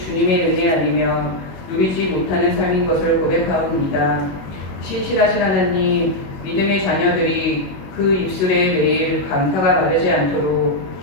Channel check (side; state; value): right; late; 21 ms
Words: 은혜 아니며 누리지 못하는 삶인 것을 고백하옵니다. 신실하신 하나님, 믿음의 자녀들이 그 입술에 매일 감사가 마르지 않도록